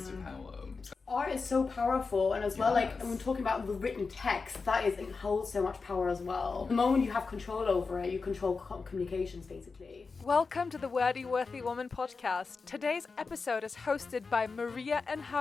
to power. Art is so powerful, and as well, Yes. like when talking about the written text, it holds so much power as well. The moment you have control over it, you control communications basically. Welcome to the Wordy Worthy Woman podcast. Today's episode is hosted by Maria and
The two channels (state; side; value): quieter; right; 4.5 dB